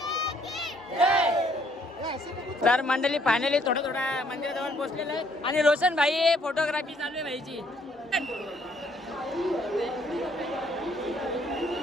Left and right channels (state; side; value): normal; both; correlation 0.66